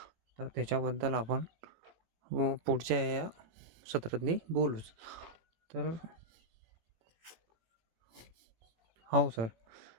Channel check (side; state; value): left; late; 18 ms